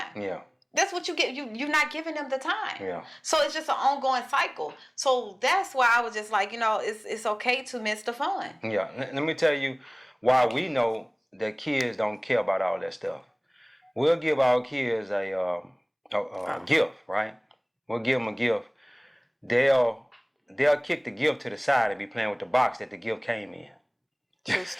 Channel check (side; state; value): both; identical; correlation 1.00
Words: Yeah. That's what you get. You're not giving them the time. Yeah. So it's just an ongoing cycle. So that's why I was just like, it's okay to miss the fun. Yeah. Let me tell you why we know that kids don't care about all that stuff. We'll give our kids a gift, right? We'll give them a gift. They'll kick the gift to the side and be playing with the box that the gift came in. True